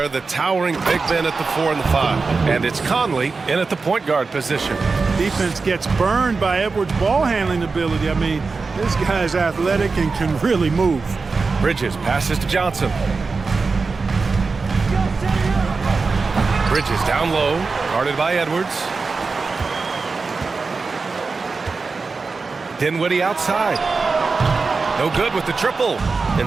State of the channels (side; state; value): left; quieter; 4.3 dB